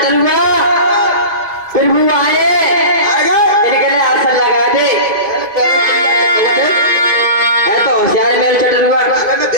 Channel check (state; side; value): late; left; 2.2 ms